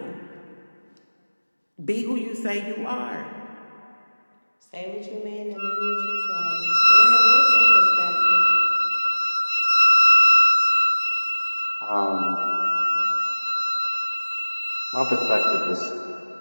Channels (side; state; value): both; inverted; correlation -1.00